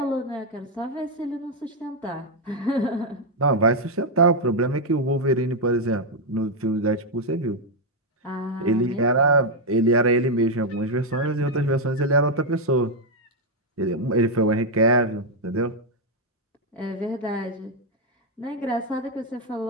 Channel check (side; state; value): both; normal; correlation 0.01